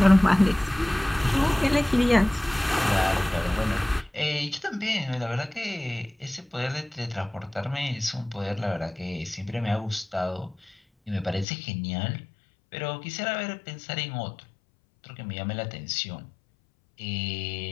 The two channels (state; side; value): drops out; right; at 11.5 s